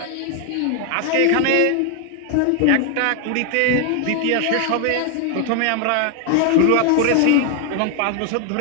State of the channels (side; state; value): both; different; correlation 0.00